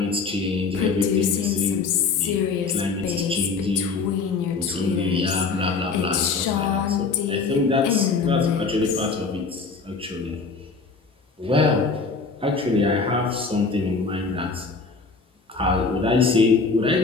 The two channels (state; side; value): quieter; right; 4.5 dB